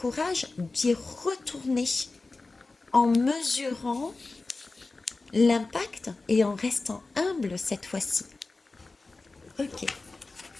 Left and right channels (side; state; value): right; quieter; 3.5 dB